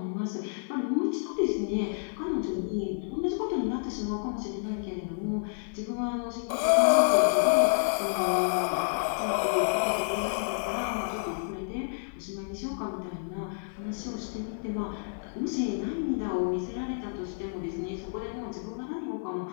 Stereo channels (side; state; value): right; silent; 58 dB below the other